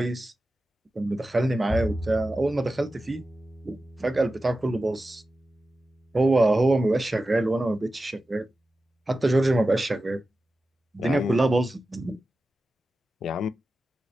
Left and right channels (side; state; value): both; normal; correlation 0.93